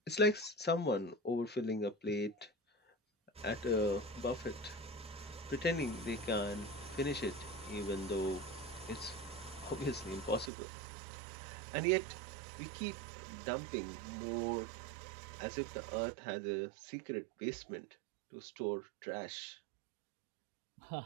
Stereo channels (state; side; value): drops out; left; at 10.5 s